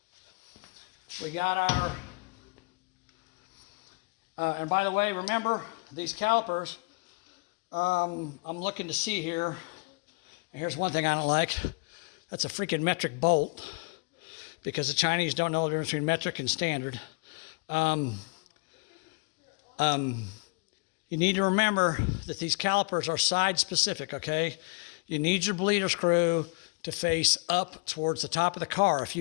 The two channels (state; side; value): quieter; right; 31.3 dB